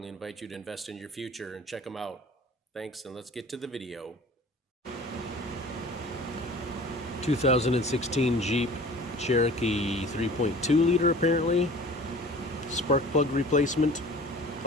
invite you to invest in your future and check them out. Thanks, and let's get to the video. 2016 Jeep Cherokee 3.2 liter apparently. Spark plug replacement,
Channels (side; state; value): both; normal; correlation 0.44